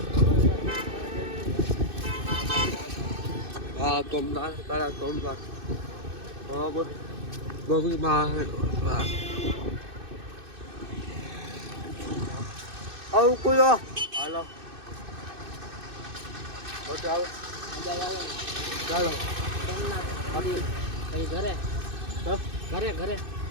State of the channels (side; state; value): left; late; 2.6 ms